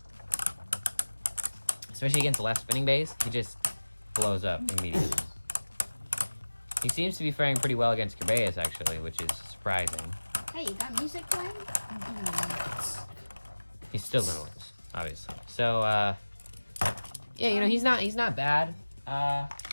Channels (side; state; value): both; inverted; correlation -1.00